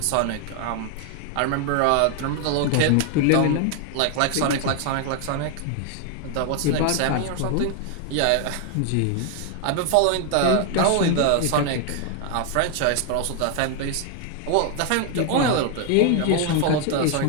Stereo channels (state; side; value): different; both; correlation 0.00